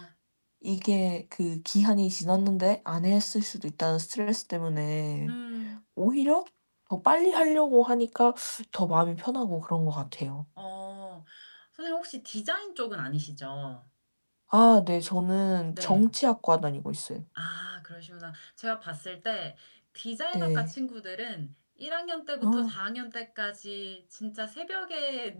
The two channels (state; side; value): inverted; both; correlation -1.00